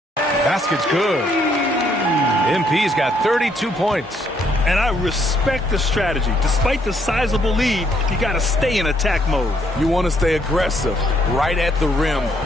Basket's good. MP's got 32 points. And I respect the strategy. Despite the sizable lead, you got to stay in attack mode. You want to stay aggressive, right at the rim,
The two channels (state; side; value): normal; both; correlation 0.70